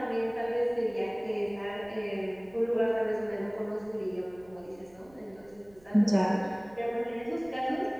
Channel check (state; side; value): noise; right; rumble, 28 dB below the sound